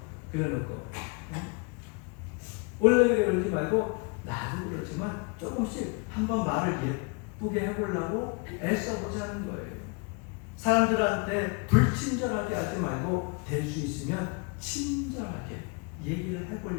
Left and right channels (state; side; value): quieter; right; 32.2 dB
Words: 그래놓고, 원래 그러지 말고, 나도 그렇지만 조금씩 한번 말을 예쁘게 해보려고 애써보자는 거예요. 사람들한테 불친절하게 하지 말고 될 수 있으면 친절하게 얘기를